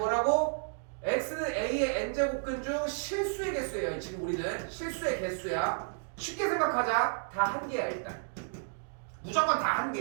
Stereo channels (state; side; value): silent; left; digital silence